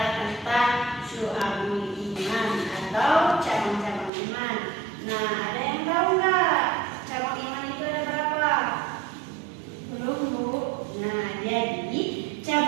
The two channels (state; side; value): drops out; left; at 4.1 s